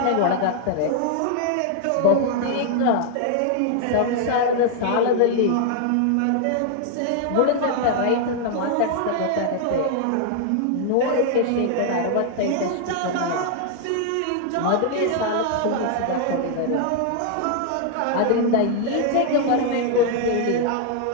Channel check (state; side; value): different; both; correlation 0.00